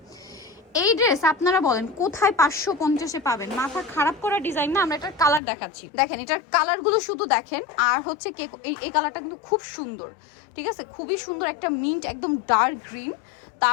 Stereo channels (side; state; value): right; drops out; at 5.4 s